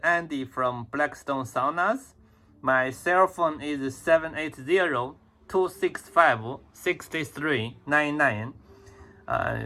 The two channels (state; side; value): identical; both; correlation 1.00